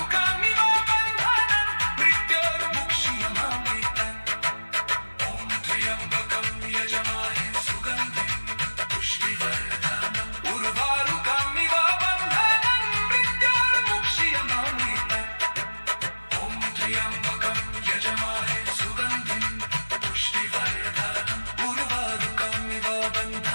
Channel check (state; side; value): inverted; both; correlation -1.00